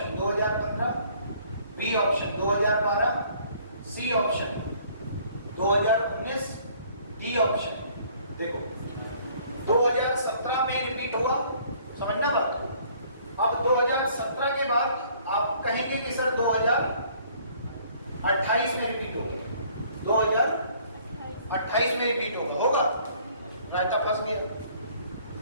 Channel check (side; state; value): both; inverted; correlation -0.59